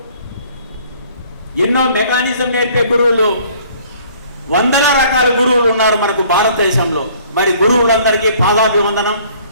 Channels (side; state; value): both; inverted; correlation -0.56